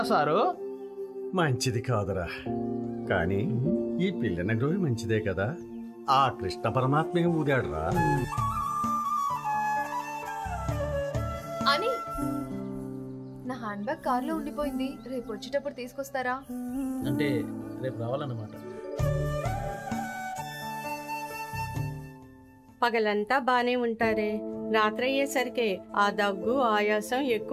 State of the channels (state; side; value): identical; both; correlation 1.00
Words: సారు? మంచిది కాదురా, కానీ ఈ పిల్లని గ్రోవి మంచిదే కదా. ఆ కృష్ణ పరమాత్మే ఊదాడురా. అని నా హ్యాండ్ బ్యాగ్ కార్లో ఉండిపోయింది, రేపు వచ్చేటప్పుడు తీసుకొస్తారా? అంటే రేపు రావాలన్నమాట. పగలంతా బానే ఉంటారే, రాత్రి అయ్యేసరికి ఆ దగ్గు ఆయాసం